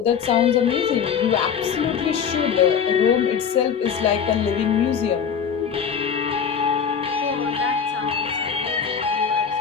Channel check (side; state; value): right; quieter; 7.1 dB